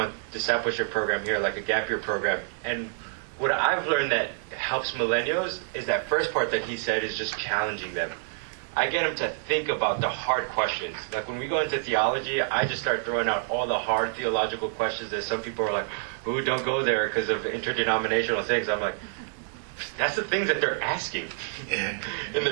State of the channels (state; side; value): silent; left; digital silence